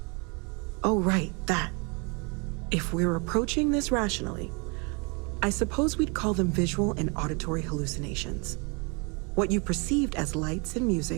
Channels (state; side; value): quieter; left; 31.8 dB